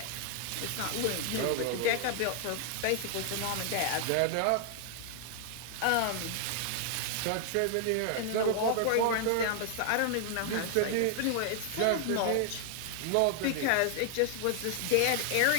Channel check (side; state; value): both; different; correlation 0.00